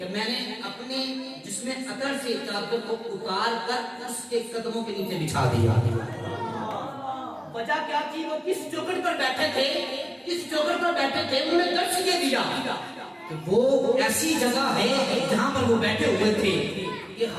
میں نے اپنے جسم اطہر سے چادر کو اتار کر اس کے قدموں کے نیچے بچھا دیا۔ وجہ کیا تھی؟ وہ کس چوکھٹ پر بیٹھے تھے، کس چوکھٹ پر بیٹھے تھے، انہوں نے درس یہ دیا کہ وہ ایسی جگہ ہے جہاں پر وہ بیٹھے ہوئے تھے کہ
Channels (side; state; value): both; identical; correlation 1.00